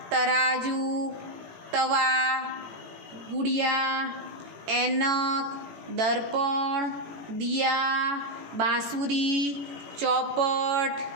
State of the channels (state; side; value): late; left; 18 ms